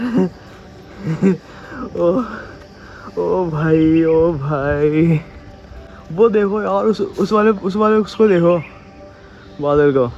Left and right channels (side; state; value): both; identical; correlation 1.00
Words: ओ ओ भाई, ओ भाई, वो देखो यार उस वाले उसको देखो, बादल को।